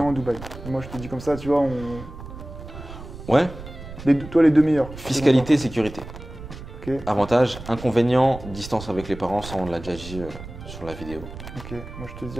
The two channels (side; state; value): right; noise; rumble, 13 dB below the sound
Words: inconvénient. à Dubaï. Et moi je te dis comme ça, tu vois, Ouais, toi les 2 meilleurs. fiscalité, sécurité. Ok, Avantage, inconvénient, distance avec les parents, ça on l'a déjà dit sur la vidéo. ok. Moi je te